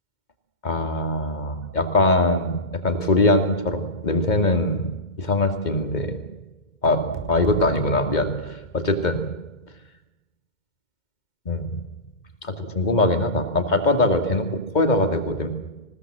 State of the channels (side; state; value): right; late; 2.1 ms